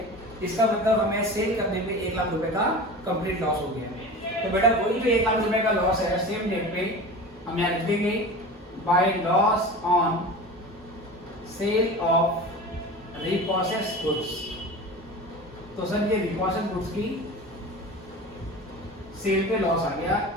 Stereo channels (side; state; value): both; normal; correlation 0.33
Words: इसका मतलब हमें सेल करने पे 1 लाख रुपए का कंप्लीट लॉस हो गया। तो बेटा वही जो 1 लाख रुपए का लॉस है सेम डेट पे हम यहाँ लिख देंगे by loss on sale of repossessed goods. तो सर ये रिपोसेस गुड्स की सेल पे लॉस आ गया